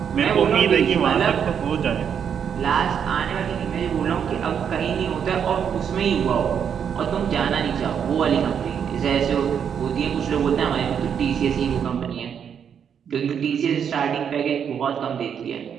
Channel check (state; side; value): quieter; left; 7.9 dB